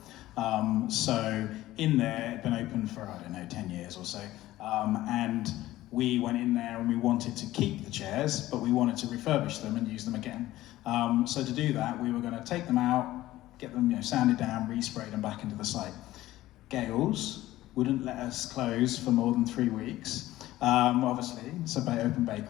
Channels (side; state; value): right; quieter; 15.8 dB